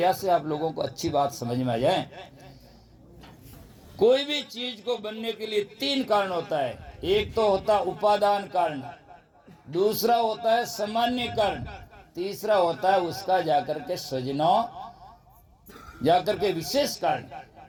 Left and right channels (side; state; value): both; identical; correlation 1.00